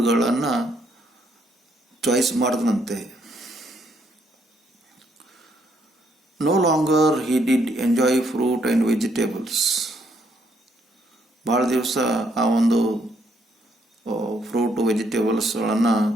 ಚಾಯ್ಸ್ ಮಾಡಿದನಂತೆ. No longer he did enjoy fruit and vegetables. ಭಾಳ ದಿವಸ ಆ ಒಂದು ಫ್ರೂಟು, ವೆಜಿಟೇಬಲ್ಸ್ಗಳನ್ನು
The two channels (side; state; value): both; normal; correlation 0.72